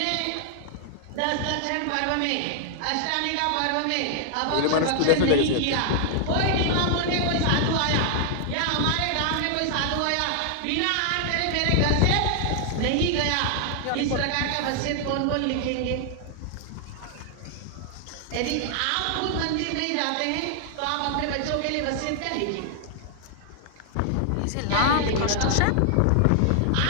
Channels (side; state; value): both; different; correlation 0.00